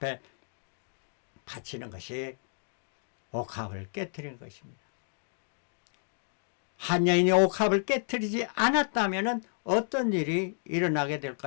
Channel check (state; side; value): silent; right; digital silence